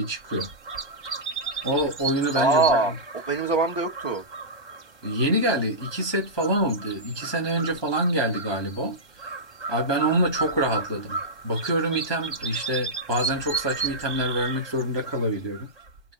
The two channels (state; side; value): late; right; 1.2 ms